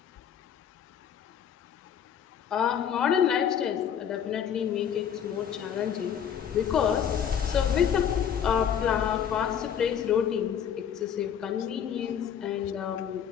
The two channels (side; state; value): right; quieter; 8.5 dB